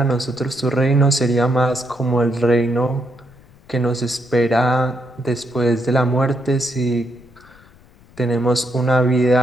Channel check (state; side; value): noise; left; rumble, 26 dB below the sound